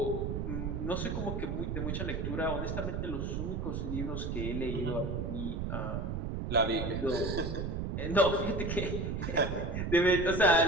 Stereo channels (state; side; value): noise; right; rumble, 2 dB below the sound